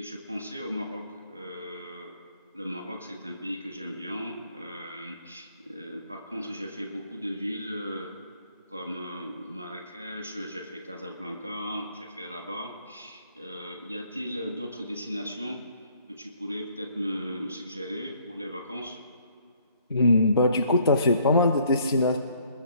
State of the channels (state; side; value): inverted; both; correlation -0.64